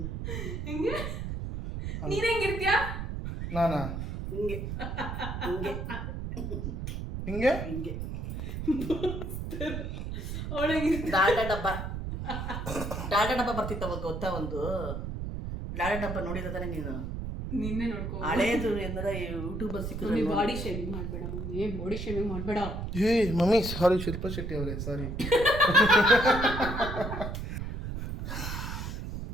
ಹೆಂಗೆ ನೀನ್ ಹೆಂಗಿರ್ತೀಯ? ನಾನಾ ಹಿಂಗೆ ಹಿಂಗೆ ಹಿಂಗೆ ಅವಳಿಗೆ ಡಾಲ್ಡಾ ಡಬ್ಬ ಬರ್ತಿತ್ತು ಅವಾಗ ಗೊತ್ತಾ? ಒಂದು ಡಾಲ್ಡಾ ಡಬ್ಬ ನೋಡಿದ ತಾನೆ ನೀನು? ನಿನ್ನೆ ನೋಡ್ಕೊ. ಹಳೇದು ಎಂದ್ರೆ ಯೂಟ್ಯೂಬ್ ಸಿಕ್ಕಿದ್ರೆ ಬಾಡಿ ಶೇವಿಂಗ್ ಮಾಡ್ಬೇಡ ಮಮ್ಮಿ, ಬಾಡಿ ಶೇವಿಂಗ್ ಮಾಡ್ಬೇಡ. ಏ ಮಮ್ಮಿ ಸಾರಿ, ಶಿಲ್ಪಾ ಶೆಟ್ಟಿ ಅವರೇ ಸಾರಿ.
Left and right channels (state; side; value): noise; right; rumble, 5 dB below the sound